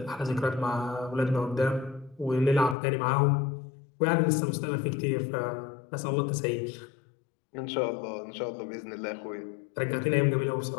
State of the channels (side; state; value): right; drops out; at 2.8 s